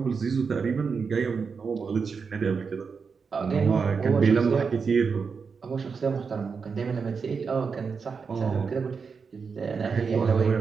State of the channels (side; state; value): left; quieter; 5.5 dB